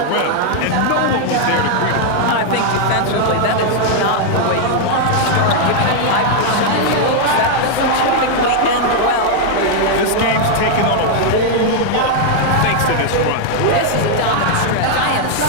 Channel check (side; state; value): both; different; correlation 0.00